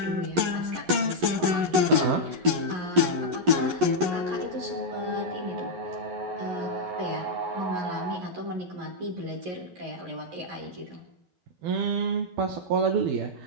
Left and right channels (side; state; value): left; late; 11 ms